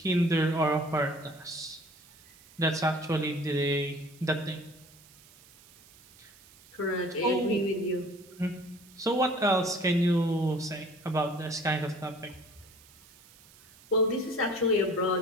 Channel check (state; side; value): noise; right; hiss, 24 dB below the sound